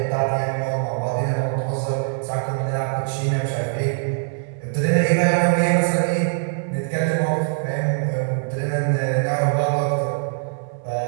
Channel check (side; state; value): left; silent; 62 dB below the other